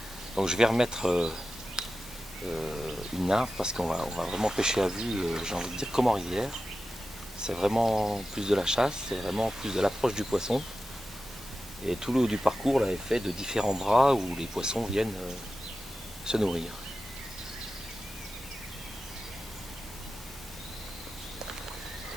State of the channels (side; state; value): both; normal; correlation 0.92